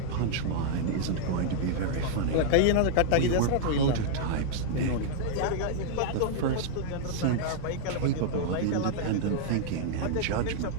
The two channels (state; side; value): different; both; correlation -0.01